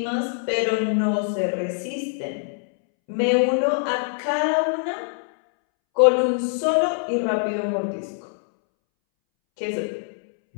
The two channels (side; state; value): right; silent; 63 dB below the other